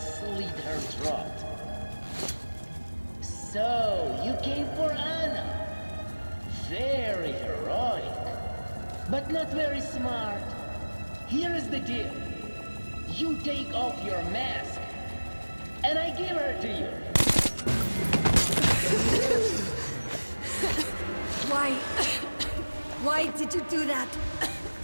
her throat. So, you came for Anna. Very heroic, but not very smart. Here is the deal. You take off your mask, and I give her to you. Why did you do that?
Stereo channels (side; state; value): both; inverted; correlation -1.00